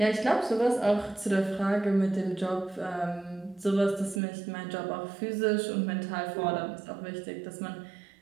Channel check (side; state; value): left; drops out; at 4.2 s